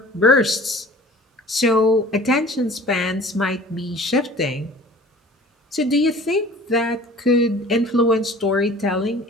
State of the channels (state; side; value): normal; both; correlation 0.46